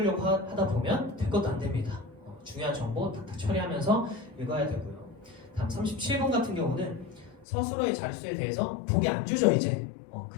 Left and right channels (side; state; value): right; drops out; at 7.5 s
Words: 하다 보면 될 것도 안 됩니다. 중요한 정보 탁탁 처리하면서 읽어야 되고요. 다음 37번 같은 경우는 서술어의 자릿수에 대해서 보기 안 주죠. 이제